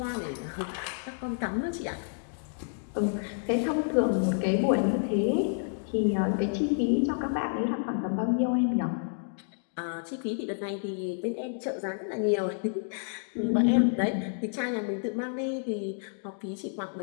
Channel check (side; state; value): right; silent; digital silence